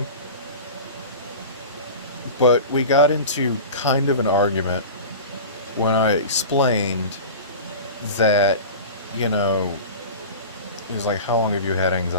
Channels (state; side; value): inverted; both; correlation -0.33